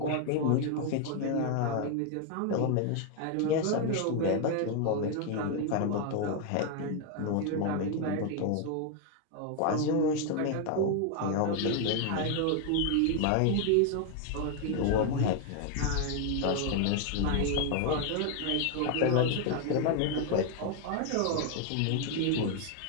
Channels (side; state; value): both; different; correlation 0.00